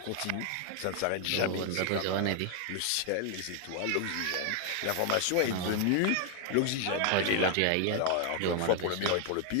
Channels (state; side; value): different; both; correlation 0.00